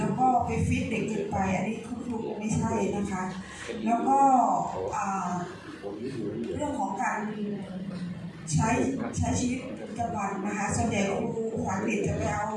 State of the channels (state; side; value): identical; both; correlation 1.00